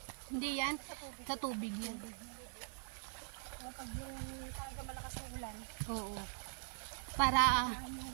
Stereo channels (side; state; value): left; silent; digital silence